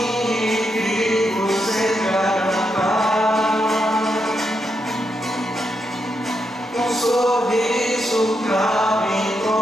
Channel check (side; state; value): both; normal; correlation 0.82